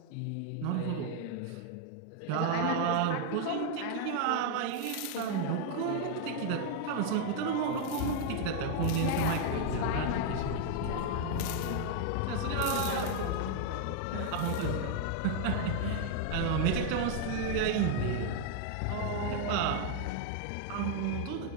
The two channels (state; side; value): different; both; correlation 0.00